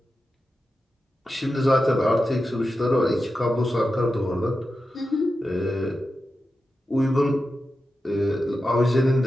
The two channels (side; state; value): both; normal; correlation 0.91